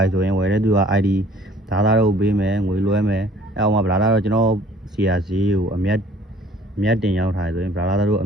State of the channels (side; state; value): both; normal; correlation 0.55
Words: ဆိုရင်ဝယ်တဲ့သူက ID ဒါသားတို့ပေးမယ်ငွေလွှဲမယ်အဲ့အောင်မှာဗလာလာတော့ကျွန်တော်စီယာဈေးကိုအမြတ်တင်ရောက်ထားဆိုရင်ဗလာလာတို့